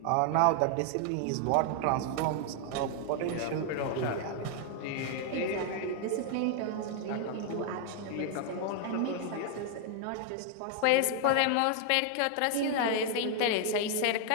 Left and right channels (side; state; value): both; different; correlation 0.00